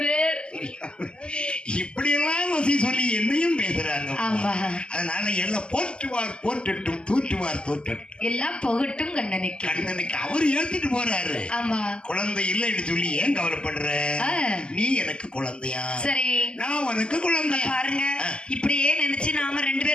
இப்படி எல்லாம் வசி சொல்லி என்னையும் பேசுறாங்க. அதனால எல்லாம் போற்றுவார் போற்றட்டும், தூற்றுவார் தூற்றட்டும், எல்லாம் புகட்டும் கண்ணனுக்கு. கண்ணனுக்கு அவர் ஏத்துட்டு போறாரு. ஆமா, குழந்தை இல்லைன்னு சொல்லி ஏன் கவலைப்படுற? நீ எனக்கு குழந்தையா, சரி நான் உனக்கு குழந்தை. பாருங்க, இப்படியே நினைச்சு நாம 2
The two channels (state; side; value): late; right; 0.050 ms